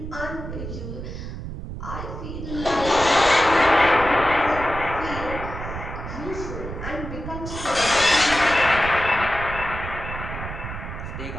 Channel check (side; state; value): right; noise; rumble, 8 dB below the sound